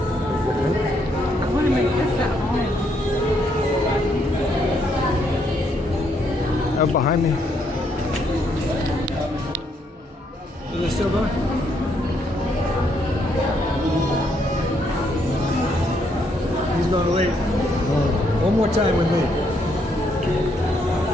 want to make this at home. Out behind me. Is it still going? He's going late. One more time with me.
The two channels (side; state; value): both; normal; correlation 0.73